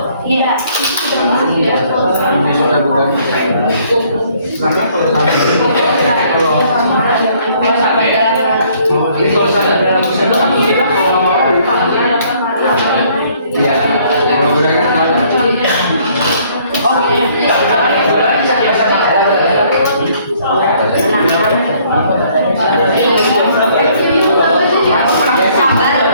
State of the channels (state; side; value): inverted; both; correlation -0.62